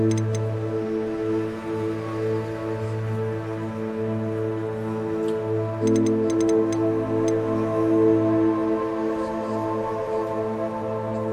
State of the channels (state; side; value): identical; both; correlation 1.00